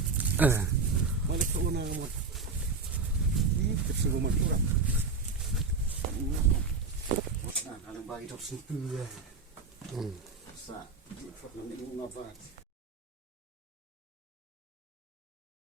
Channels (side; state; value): left; quieter; 4.4 dB